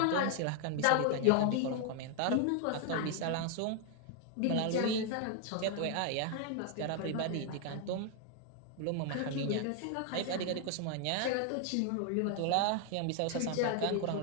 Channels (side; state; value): both; different; correlation 0.00